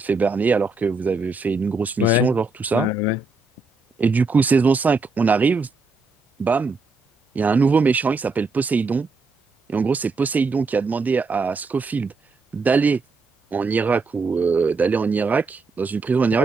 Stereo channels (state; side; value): quieter; left; 3.7 dB